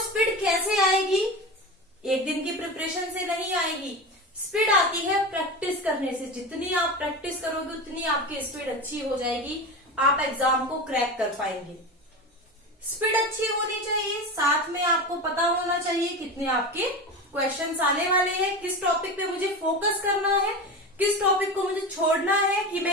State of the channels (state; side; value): normal; both; correlation 0.25